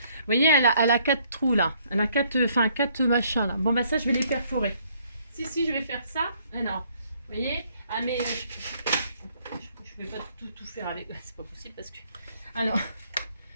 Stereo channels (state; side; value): inverted; both; correlation -0.65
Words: voyez, elle a 4 trous, là. Elle a 4 machins, là. Bon, bah ça, je vais les perforer. Si, je vais faire ça. Alors, vous voyez. Ah mais je vais pas tout faire avec. C'est pas possible parce que. Alors,